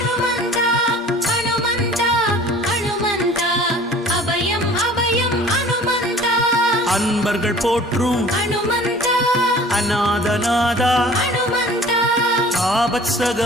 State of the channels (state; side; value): normal; both; correlation 0.47